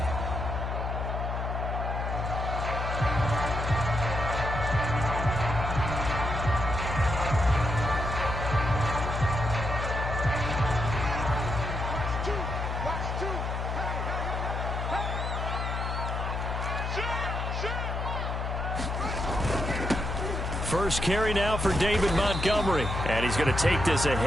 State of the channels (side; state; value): left; noise; hum, 2 dB below the sound